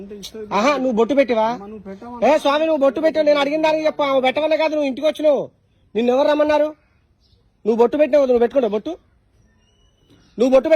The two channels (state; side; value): identical; both; correlation 1.00